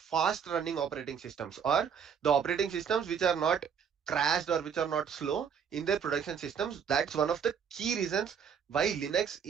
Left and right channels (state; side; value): quieter; left; 7.3 dB